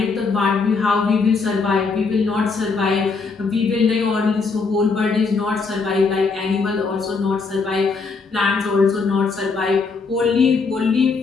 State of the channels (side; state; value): right; quieter; 4.5 dB